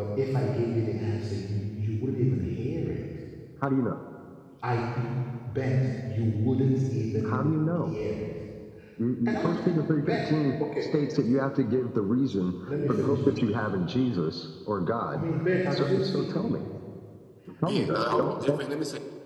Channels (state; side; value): identical; both; correlation 1.00